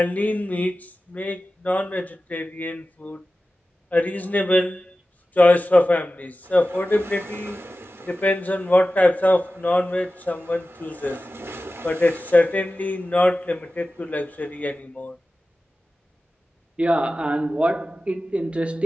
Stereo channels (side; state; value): both; normal; correlation 0.95